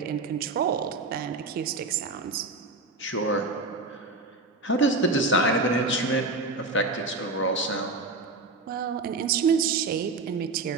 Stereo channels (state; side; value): quieter; left; 3.3 dB